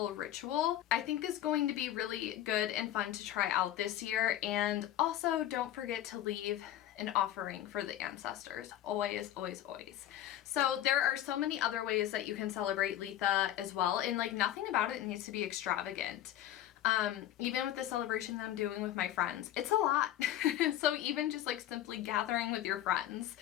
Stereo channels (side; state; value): right; quieter; 12.6 dB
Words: ritual, I think, is going to be really good and fun to try out this year. And also don't forget to leave an offering for the ancestors. Always, always, always. So there are so many other ways that you can celebrate Litha as well, and like nothing about it needs to be extravagant. Even with the celebration that I'm doing with my friends, it's a lot. So even just like simply gathering with your friends